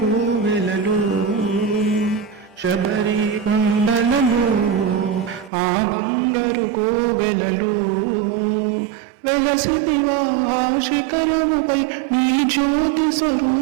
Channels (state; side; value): drops out; left; at 5.5 s